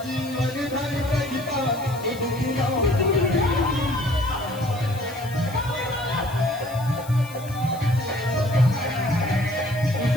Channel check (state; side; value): noise; left; hiss, 18 dB below the sound